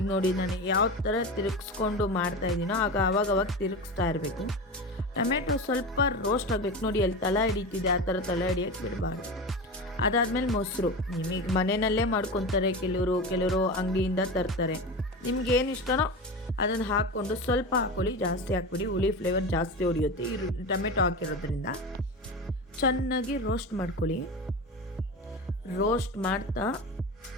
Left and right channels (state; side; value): normal; both; correlation 0.25